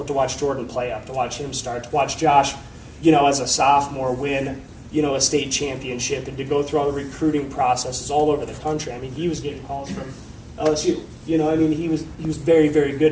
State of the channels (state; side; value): identical; both; correlation 1.00